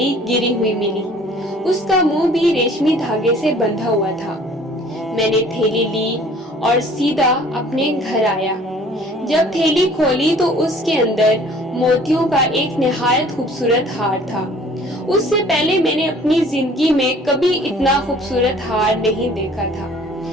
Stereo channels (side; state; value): both; normal; correlation 0.52